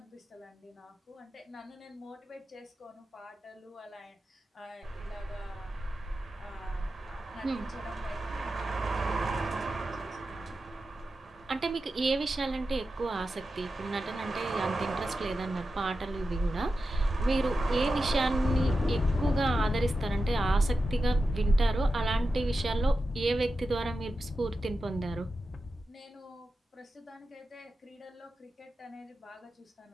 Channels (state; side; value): normal; both; correlation 0.91